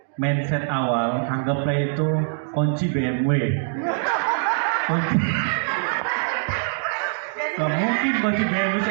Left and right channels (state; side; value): silent; left; digital silence